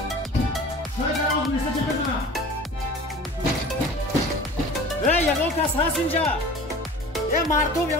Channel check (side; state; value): both; normal; correlation 0.42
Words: یهو کس هست اینجا یه مردم